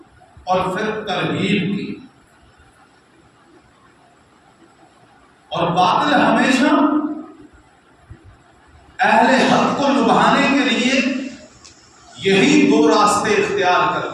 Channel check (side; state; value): both; identical; correlation 1.00